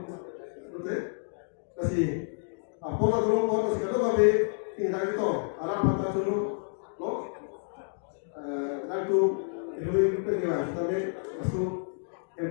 betul? Kasih, apa dulu kalau sekarang kami tinggal itu, arah mata dulu. Lo, nanti itu pengilang, tapi masuk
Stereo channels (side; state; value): right; silent; digital silence